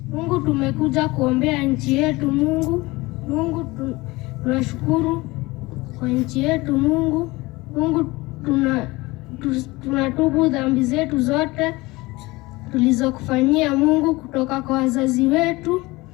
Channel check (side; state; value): right; quieter; 21.7 dB